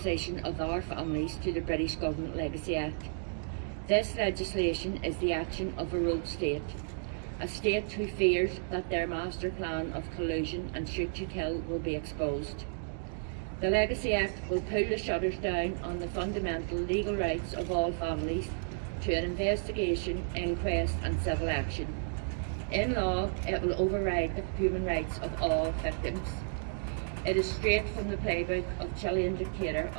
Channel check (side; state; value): left; silent; digital silence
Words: of our families to the British Government Legacy Act. This legislation is the action of a rogue state, a state who fears that their master plan of collusion and shoot to kill will be exposed. The Legacy Act will pull the shutters down on the fundamental legal rights of all families to an investigation, inquest and civil action. In law, it will override the human rights of all victims. It is straight from the playbook of Chilean dictator